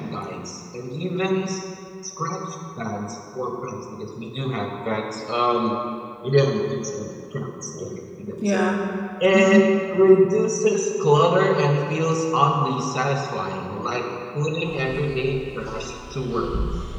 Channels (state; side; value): identical; both; correlation 1.00